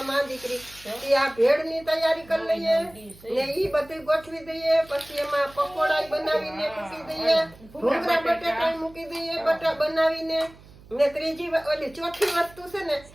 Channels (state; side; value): noise; right; hum, 22 dB below the sound